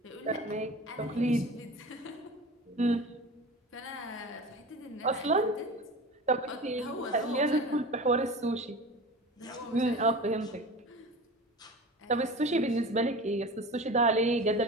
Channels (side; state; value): both; normal; correlation 0.34